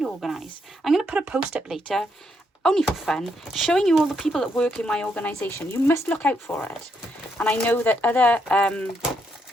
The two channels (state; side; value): normal; both; correlation 0.77